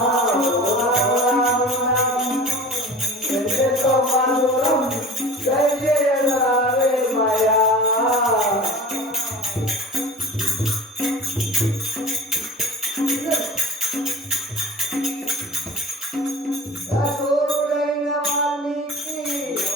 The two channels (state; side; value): normal; both; correlation 0.40